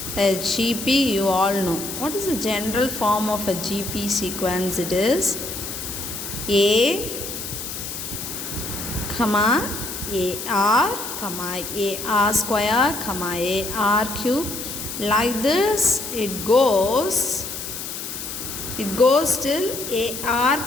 a GP, you all know. What is the general form of a GP sequence? It is A, AR, AR square, AR cube. Like this it goes till AR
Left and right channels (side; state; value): left; noise; hiss, 7 dB below the sound